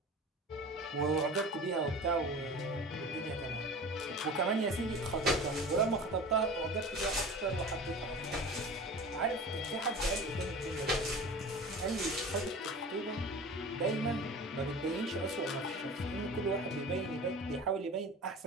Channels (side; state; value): both; normal; correlation 0.37